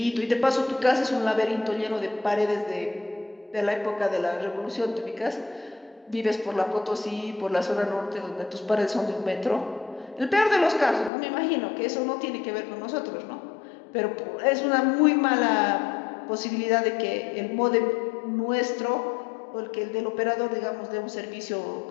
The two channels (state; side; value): drops out; right; at 11.1 s